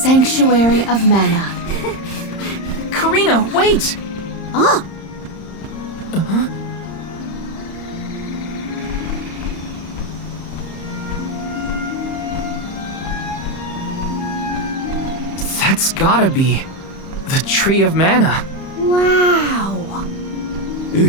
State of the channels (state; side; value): late; right; 31 ms